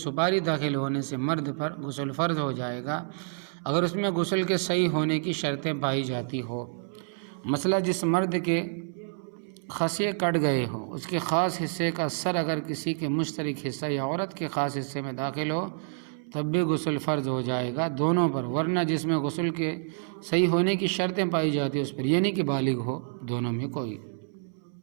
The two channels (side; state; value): left; silent; 59 dB below the other